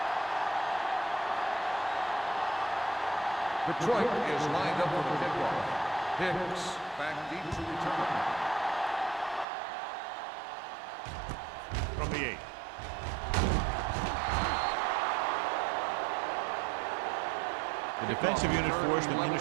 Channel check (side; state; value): left; drops out; at 9.5 s